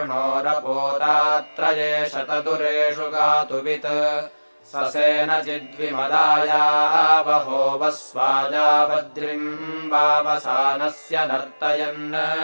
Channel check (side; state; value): both; inverted; correlation -1.00